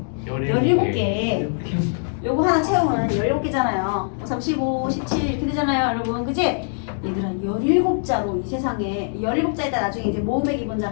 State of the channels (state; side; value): silent; right; digital silence